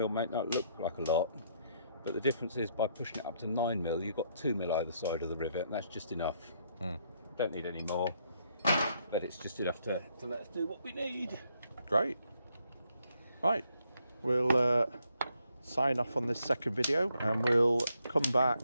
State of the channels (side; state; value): both; inverted; correlation -0.73